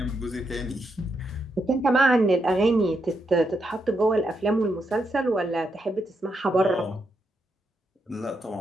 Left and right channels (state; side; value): normal; both; correlation 0.81